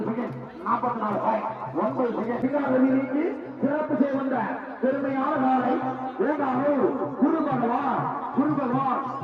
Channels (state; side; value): identical; both; correlation 1.00